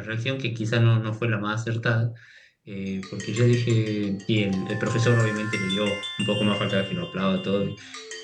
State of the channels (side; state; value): both; identical; correlation 1.00